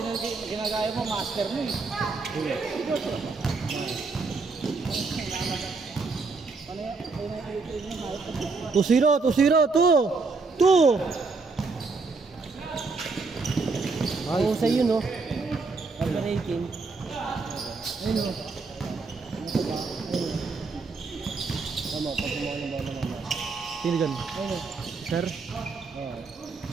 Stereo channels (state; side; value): quieter; left; 4.2 dB